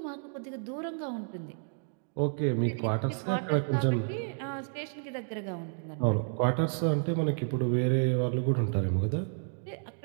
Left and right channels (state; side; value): silent; left; 57 dB below the other